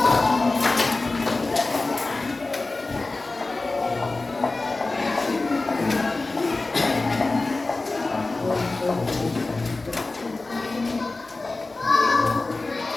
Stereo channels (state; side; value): quieter; right; 3.3 dB